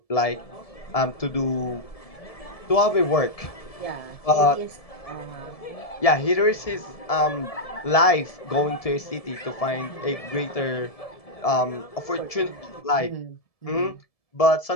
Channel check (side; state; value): right; late; 1.7 ms